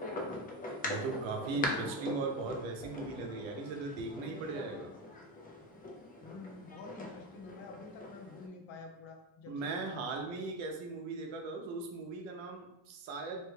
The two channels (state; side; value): normal; both; correlation 0.16